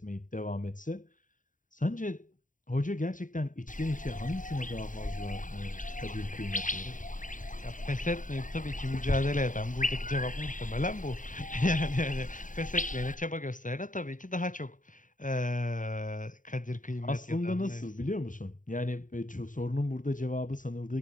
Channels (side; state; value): right; late; 0.38 ms